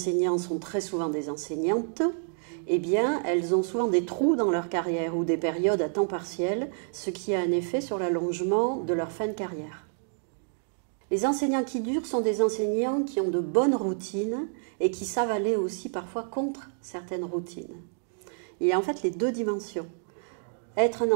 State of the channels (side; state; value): left; silent; digital silence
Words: sont très souvent des enseignantes, eh bien, elles ont souvent des trous dans leur carrière ou des périodes à temps partiel, ce qui a un effet sur l'allongement de leur fin de carrière. Les enseignants qui durent sont des enseignants qui ont de bonnes routines et qui savent aller aussi parfois contre certaines routines. Il y a en fait les deux dimensions. Être un